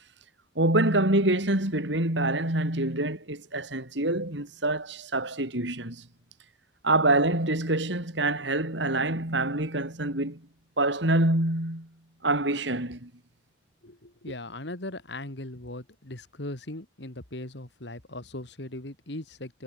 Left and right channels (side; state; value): both; normal; correlation 0.13